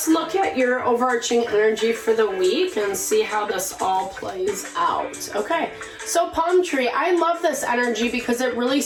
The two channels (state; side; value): identical; both; correlation 1.00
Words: look at your overarching energy for the week and see how this all plays out. Okay, so palm tree, I love this energy because it really